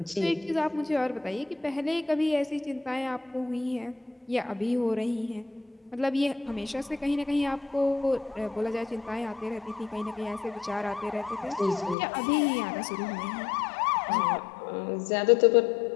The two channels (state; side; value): drops out; right; at 12.0 s